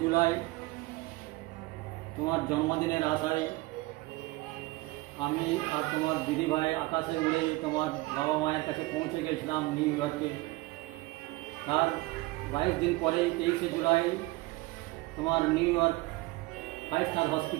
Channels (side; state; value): left; quieter; 21.1 dB